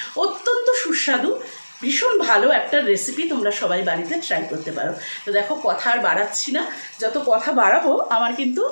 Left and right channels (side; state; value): both; inverted; correlation -1.00